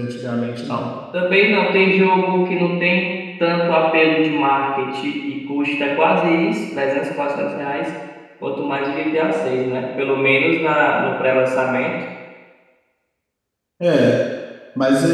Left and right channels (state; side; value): identical; both; correlation 1.00